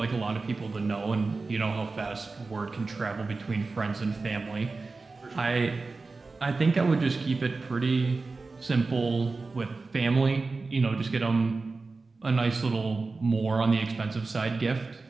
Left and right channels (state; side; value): quieter; left; 3.9 dB